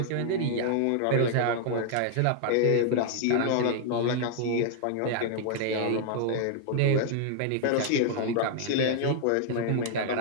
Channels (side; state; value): both; different; correlation 0.00